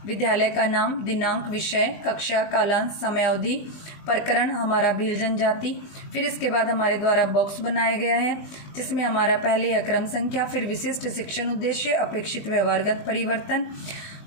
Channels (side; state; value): right; late; 20 ms